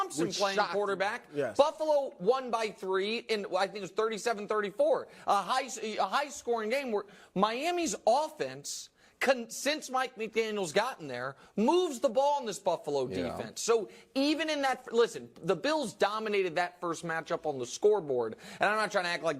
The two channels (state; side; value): identical; both; correlation 1.00